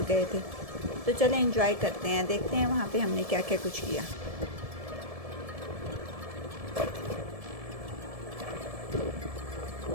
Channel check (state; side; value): late; left; 1.7 ms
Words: गए थे। तो चलें एंजॉय करते हैं, देखते हैं वहाँ पे हमने क्या क्या कुछ किया।